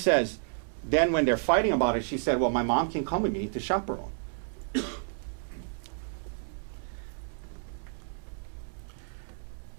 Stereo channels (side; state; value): left; silent; 57 dB below the other